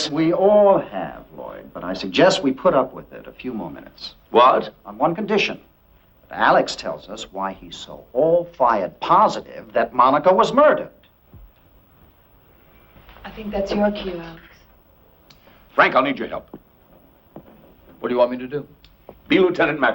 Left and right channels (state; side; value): identical; both; correlation 1.00